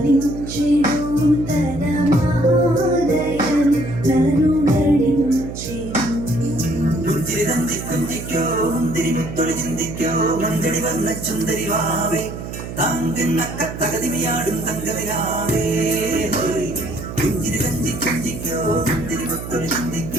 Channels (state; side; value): noise; right; hum, 9 dB below the sound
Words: ചുന്ദരിവാവേ താങ്കുന്നക്ക തകതിമയാടും തങ്കവിലാവേ കുഞ്ചിരി കഞ്ചി കുഞ്ചിക്കോ മുന്തിരി മുത്തൊളി